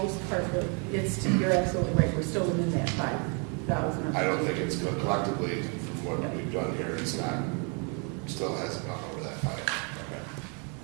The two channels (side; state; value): left; quieter; 36.4 dB